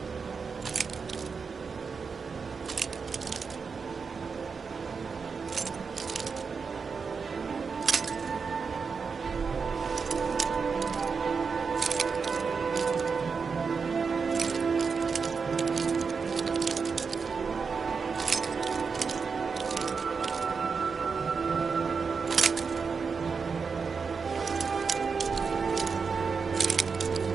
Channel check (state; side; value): quieter; left; 5.3 dB